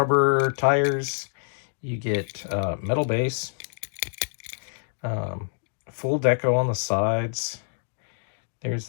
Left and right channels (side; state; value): right; silent; digital silence